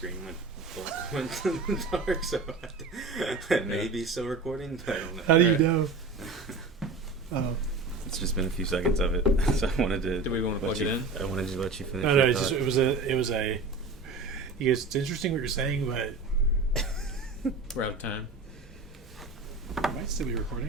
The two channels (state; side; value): quieter; left; 3.8 dB